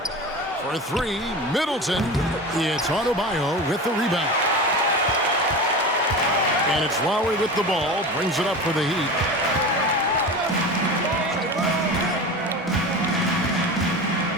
For 3, Middleton. It's Adebayo with the rebound. And it's Lowry with the ball. Brings it up for the Heat.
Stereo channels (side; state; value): both; normal; correlation 0.29